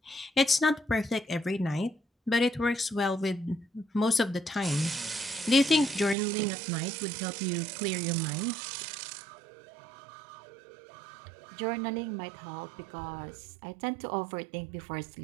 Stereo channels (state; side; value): drops out; left; at 6.2 s